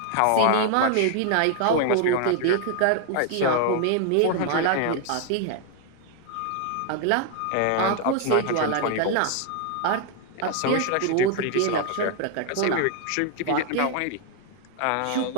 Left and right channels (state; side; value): different; both; correlation 0.00